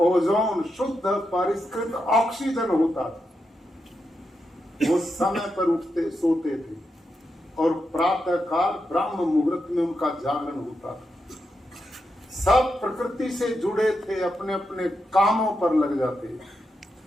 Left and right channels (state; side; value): normal; both; correlation 0.86